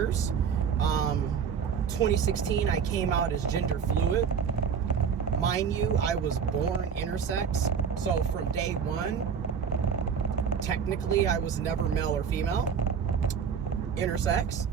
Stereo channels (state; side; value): quieter; left; 6.8 dB